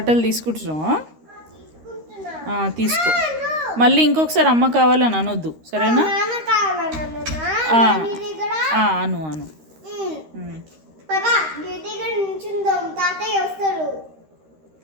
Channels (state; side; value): late; left; 13 ms